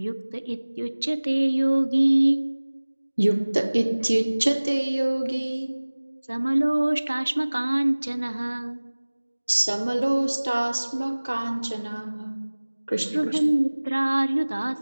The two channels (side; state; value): both; inverted; correlation -1.00